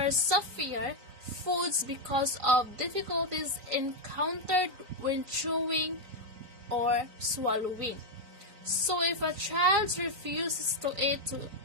softer foods because of difficulties encountered when chewing or swallowing. So if a child refuses to eat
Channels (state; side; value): late; left; 3.9 ms